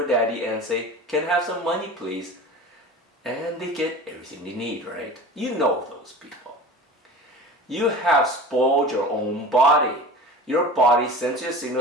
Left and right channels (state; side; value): normal; both; correlation 0.36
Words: daddy and say, "Can I have some money please?" And they get everything they need, right? You know those people. You have spoiled your own body. Your body sends you a